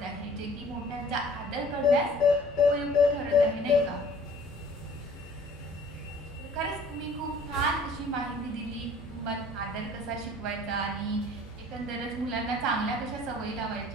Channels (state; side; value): normal; both; correlation 0.51